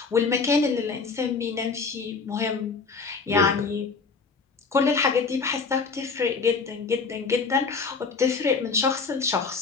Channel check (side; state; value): right; quieter; 4.9 dB